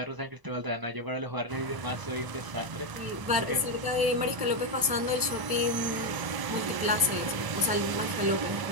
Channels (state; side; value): late; left; 1.0 ms